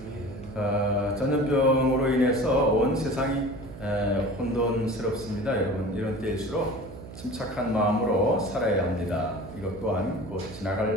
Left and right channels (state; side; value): noise; right; hum, 14 dB below the sound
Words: 전염병으로 인해서 온 세상이 혼돈스럽습니다. 여러분 이런 때일수록 침착한 마음으로 살아야 합니다. 이것 또한 곧